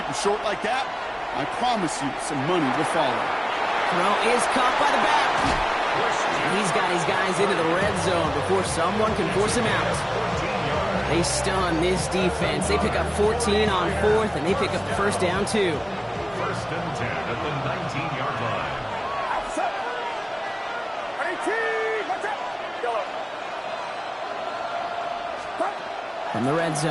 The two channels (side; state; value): both; identical; correlation 1.00